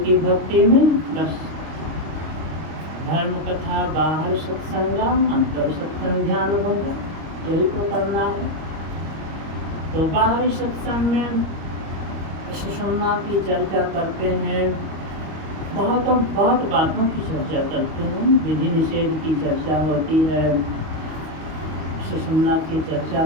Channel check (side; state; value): left; late; 25 ms